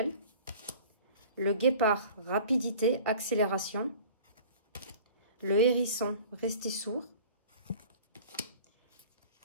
Le guépard, rapidité, accélération. Le hérisson, rester sourd.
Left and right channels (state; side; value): inverted; both; correlation -0.45